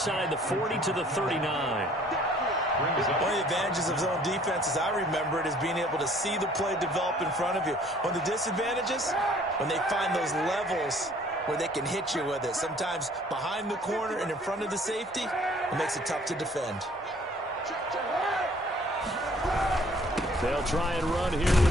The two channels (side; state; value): both; normal; correlation 0.56